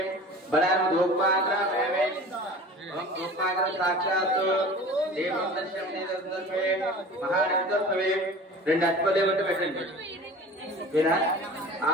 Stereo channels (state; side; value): normal; both; correlation 0.40